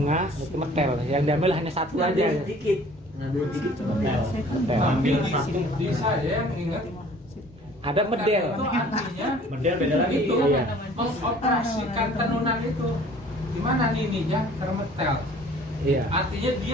itu metel. Yang diambil hanya satu aja. Ngambil sedikit. Ngambil sedikit. Metel. Metel. Tapi Ambil satu. di saya yang ingat Ada medel. itu artinya Medel beda lagi. itu Iya. mengoperasikan tenunan itu. Gimana nininya termetel? Iya. Artinya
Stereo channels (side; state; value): both; normal; correlation 0.51